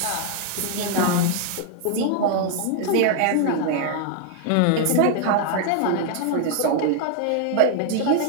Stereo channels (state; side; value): different; both; correlation 0.00